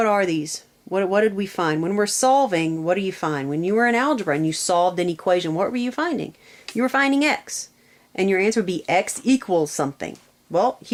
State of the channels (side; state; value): both; identical; correlation 1.00